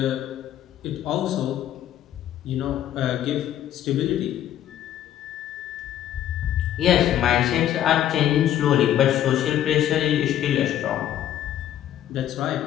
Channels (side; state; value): right; quieter; 11.4 dB